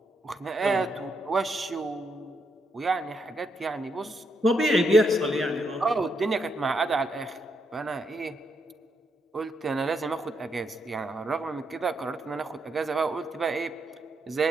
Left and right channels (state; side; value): normal; both; correlation 0.79